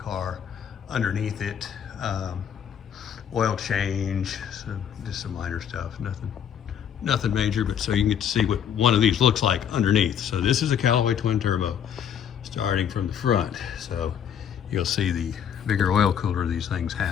Underneath it, oil change, so just some minor stuff, nothing major, but so you can get to see what one of these looks like underneath. So this is a Callaway twin turbo starting from the front. So you'll see the bigger oil cooler these things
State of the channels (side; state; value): right; quieter; 8.7 dB